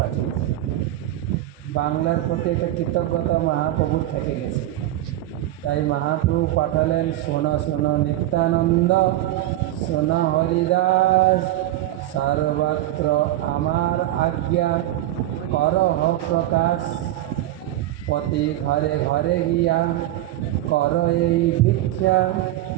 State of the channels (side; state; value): left; quieter; 14.4 dB